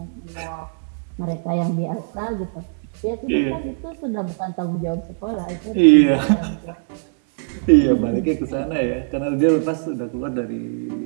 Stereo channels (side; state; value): left; silent; 64 dB below the other